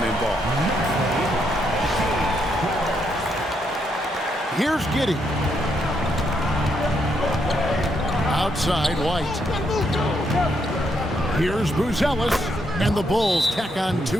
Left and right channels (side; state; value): both; normal; correlation 0.77